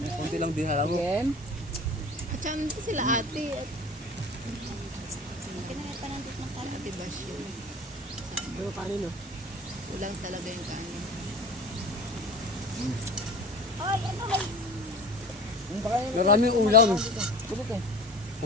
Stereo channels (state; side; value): normal; both; correlation 0.38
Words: Kunti lang din alam mo. Again. At saka nandito sila ate. At Kinain pa nandito ng kanin. ate Basyon. Pero kanino? Kulang talaga yung kanin. Oy, ano may Maraming ulam. Tulog eh.